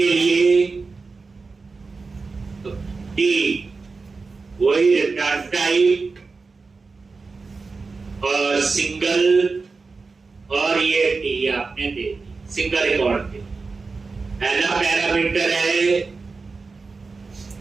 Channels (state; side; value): quieter; left; 4.3 dB